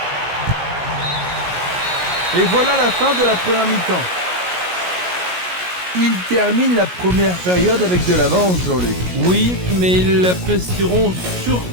Et voilà la fin de la première mi-temps. Ils terminent la première période avec de l'avance, Jean-Luc. Oui, mais ils l'apprécieront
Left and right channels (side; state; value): left; late; 17 ms